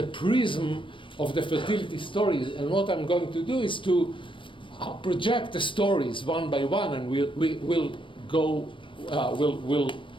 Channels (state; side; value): late; right; 0.24 ms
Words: prism of the fertility stories. And what I'm going to do is to project the stories one by one, and we'll